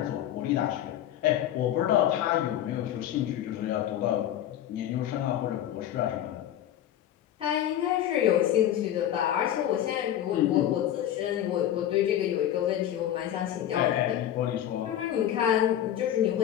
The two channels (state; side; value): quieter; right; 11.4 dB